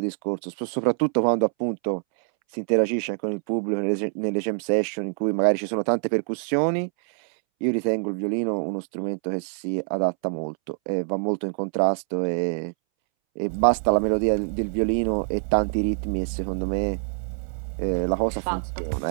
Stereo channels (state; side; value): silent; left; 62 dB below the other